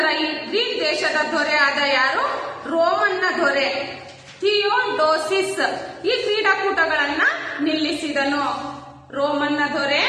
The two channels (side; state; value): both; identical; correlation 1.00